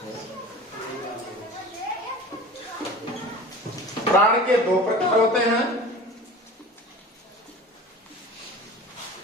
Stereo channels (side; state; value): both; normal; correlation 0.38